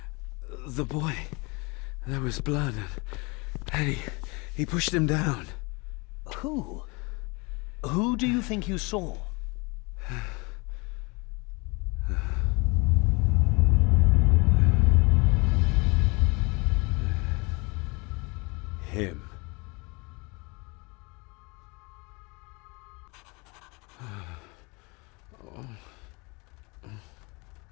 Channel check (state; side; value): quieter; right; 28.1 dB